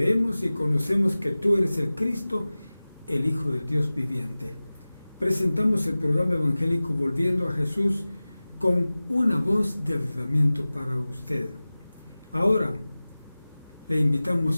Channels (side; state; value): both; inverted; correlation -0.98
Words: y conocemos que tú eres el Cristo, el Hijo del Dios viviente. Presentamos el programa evangélico Volviendo a Jesús con una voz de avivamiento para usted. Ahora le